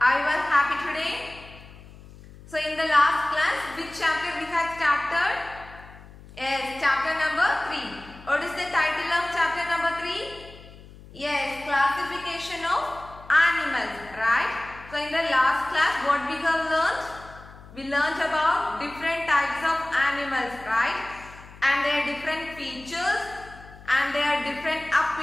you all happy today? So in the last class, which chapter we had started? Yes, chapter number 3. What is the title of chapter number 3? Yes, classification of animals, right? So in the last class, what we have learned? We learned about different types of animals, right? And their different features and their different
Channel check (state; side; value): noise; left; hum, 19 dB below the sound